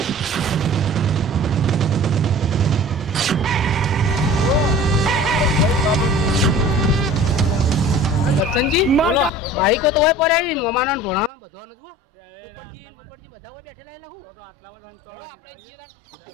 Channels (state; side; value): drops out; left; at 11.3 s